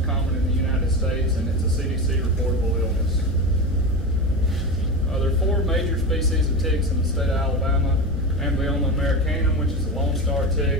common in the United States, and it's a CDC reportable illness. There are 4 major species of ticks in the state of Alabama. Amblyoma americanum, which is the lone star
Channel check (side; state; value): both; normal; correlation 0.23